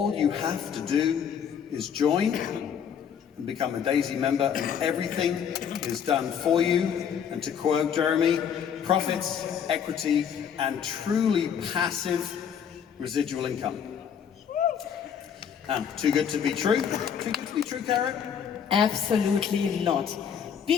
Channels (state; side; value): quieter; right; 7.9 dB